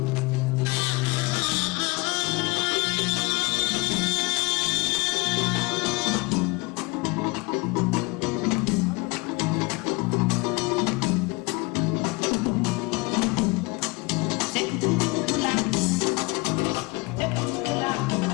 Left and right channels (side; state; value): right; quieter; 25.4 dB